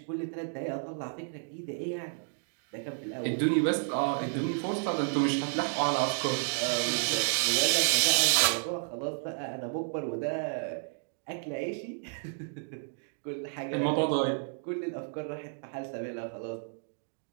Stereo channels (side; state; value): left; silent; digital silence